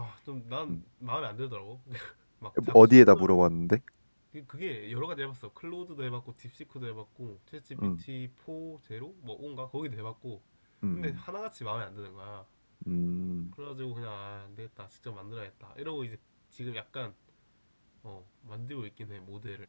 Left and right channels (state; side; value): inverted; both; correlation -1.00